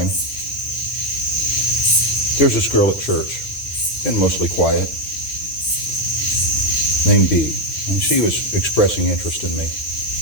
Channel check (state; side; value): late; right; 7.6 ms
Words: there's this girl at church, been mostly quiet, named Bee, and she was expressing interest in me.